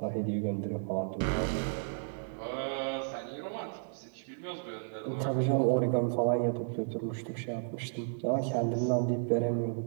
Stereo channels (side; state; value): left; silent; digital silence